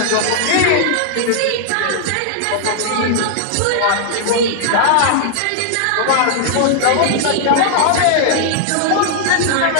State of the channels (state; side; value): different; both; correlation -0.01